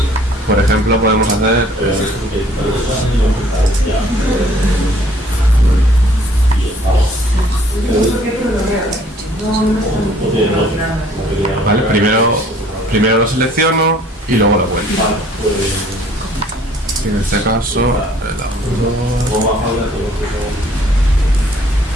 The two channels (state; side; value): normal; both; correlation 0.58